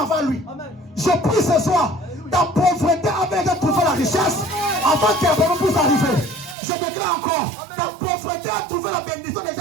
lui. Je prie ce soir, ta pauvreté avait déjà trouvé la richesse avant qu'elle puisse arriver. Je déclare encore, ta pauvreté a trouvé la bénédiction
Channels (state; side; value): drops out; left; at 6.6 s